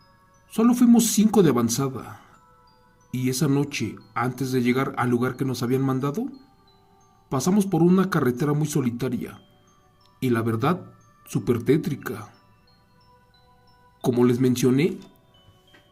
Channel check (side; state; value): both; identical; correlation 1.00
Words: solo fuimos 5 de avanzada, y esa noche, antes de llegar al lugar que nos habían mandado, pasamos por una carretera muy solitaria, y la verdad, súper tétrica. Como les mencioné,